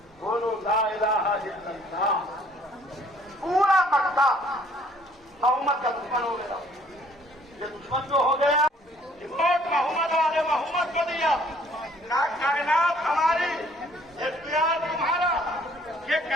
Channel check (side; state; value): both; normal; correlation 0.59